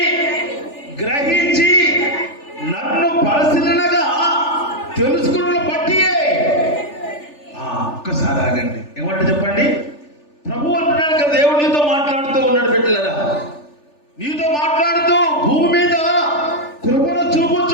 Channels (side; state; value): right; late; 3.4 ms